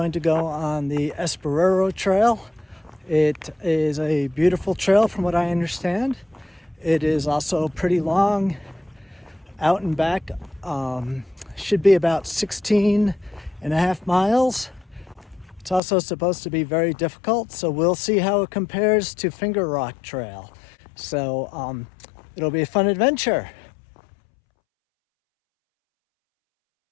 to go on the Esperero Trail. It is a beautiful trail from what I understand. It is also pretty long, out and back. Should be about 16 and a half miles. It's also supposed to be very difficult, so we'll see how it compares to Finger Rock Trail. So it'll be a fun adventure.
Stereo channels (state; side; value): drops out; right; at 15.8 s